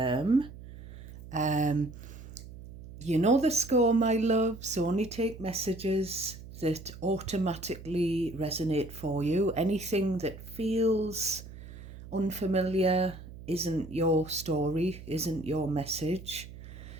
You know the score, my loves. Only take messages that automatically resonate for you. Anything that feels unfamiliar isn't your story, isn't your message.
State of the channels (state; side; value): noise; right; hum, 15 dB below the sound